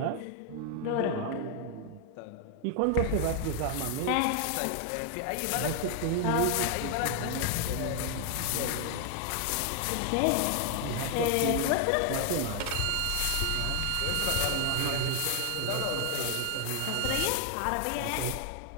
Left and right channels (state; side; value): different; both; correlation 0.00